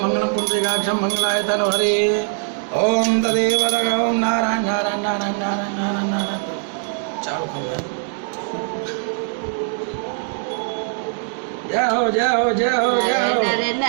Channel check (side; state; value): left; silent; digital silence